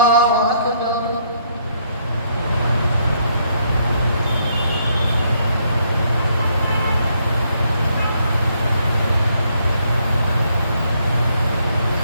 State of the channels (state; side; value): inverted; both; correlation -0.71